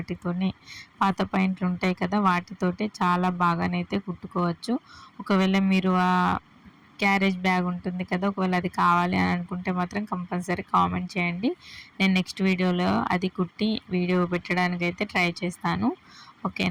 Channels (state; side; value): identical; both; correlation 1.00